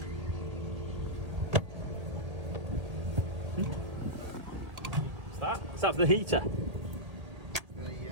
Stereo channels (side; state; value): left; late; 1.8 ms